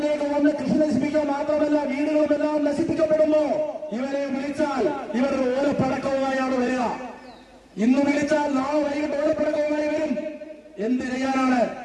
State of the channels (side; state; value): both; identical; correlation 1.00